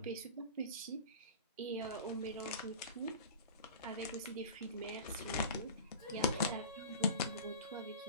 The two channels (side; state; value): both; inverted; correlation -0.36